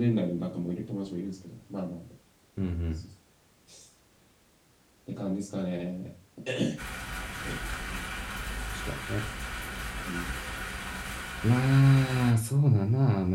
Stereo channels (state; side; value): identical; both; correlation 1.00